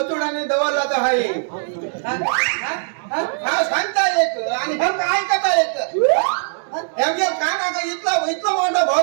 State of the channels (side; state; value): left; silent; 66 dB below the other